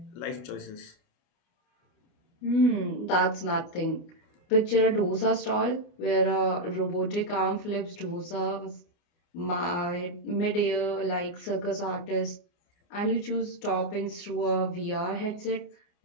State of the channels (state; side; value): late; right; 28 ms